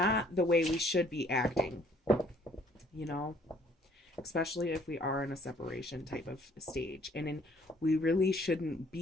the way we should be acting. You know, especially if we are in a separation type of stage. We really shouldn't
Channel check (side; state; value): both; normal; correlation 0.60